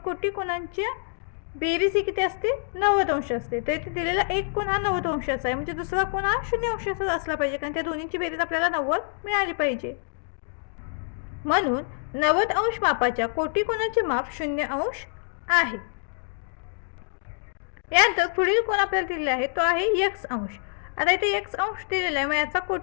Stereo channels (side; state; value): right; silent; digital silence